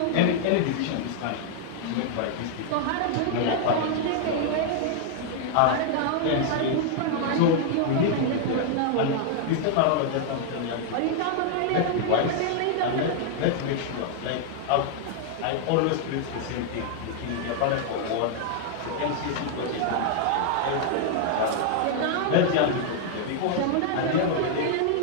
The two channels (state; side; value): different; both; correlation 0.00